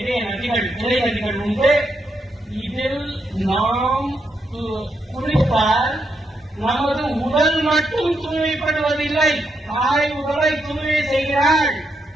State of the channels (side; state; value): both; normal; correlation 0.80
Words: நதிகள், கிளை நதிகள் உண்டு. இதில் நாம் குளித்தால் நமது உடல் மட்டும் தூய்மைப்படுவதில்லை, தாய் உடலை தூய்மை செய்கிறாள்.